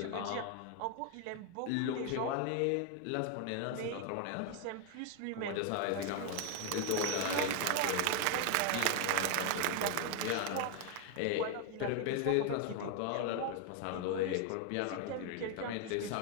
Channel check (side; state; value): both; different; correlation 0.01